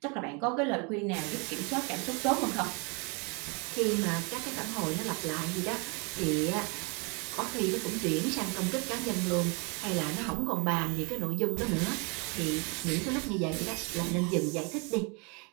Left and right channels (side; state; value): left; quieter; 32.2 dB